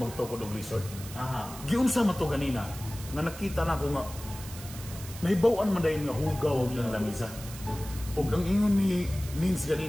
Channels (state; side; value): noise; right; hiss, 14 dB below the sound